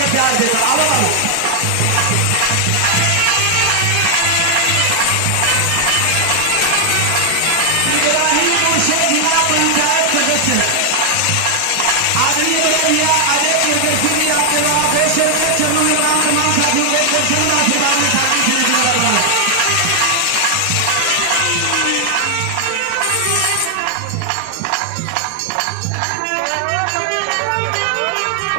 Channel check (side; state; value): both; different; correlation 0.00